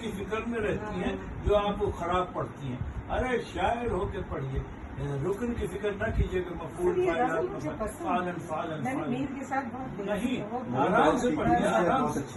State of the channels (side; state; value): both; identical; correlation 1.00